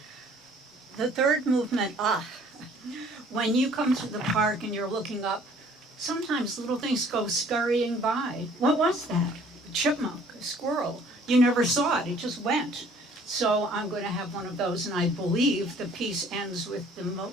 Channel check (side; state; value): both; normal; correlation 0.56